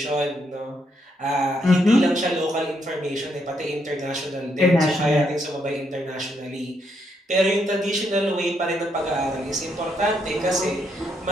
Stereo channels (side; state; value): both; normal; correlation 0.76